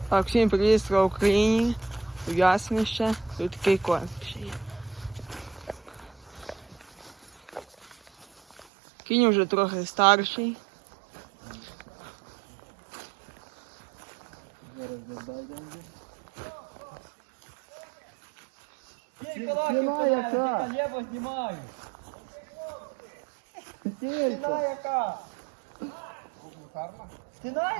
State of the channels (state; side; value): drops out; left; at 8.7 s